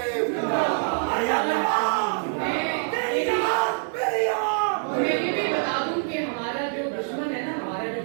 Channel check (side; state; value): left; silent; digital silence